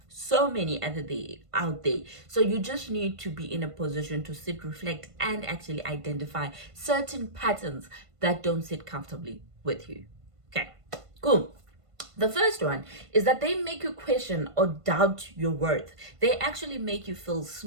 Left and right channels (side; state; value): left; late; 1.5 ms